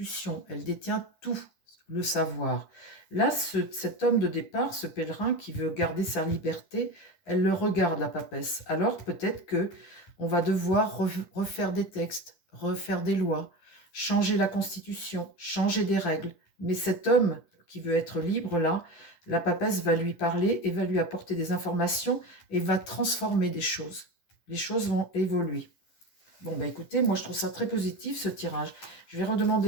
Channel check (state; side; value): late; right; 10 ms